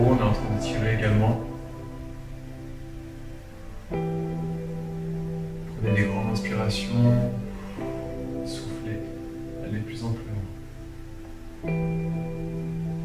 est en train de tirer également. Prenez des grandes inspirations, soufflez, allez de plus en plus loin.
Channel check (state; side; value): identical; both; correlation 1.00